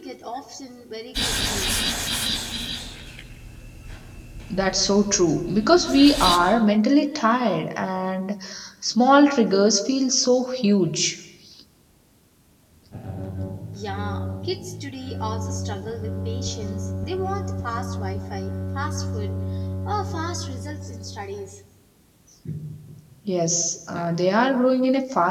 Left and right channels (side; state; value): both; identical; correlation 1.00